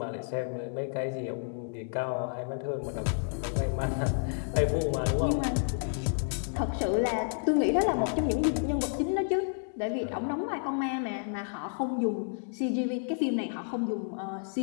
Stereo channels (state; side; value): silent; right; digital silence